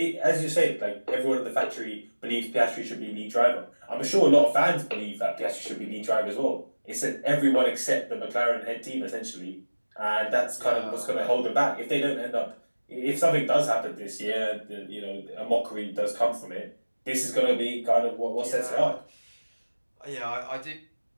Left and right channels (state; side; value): inverted; both; correlation -1.00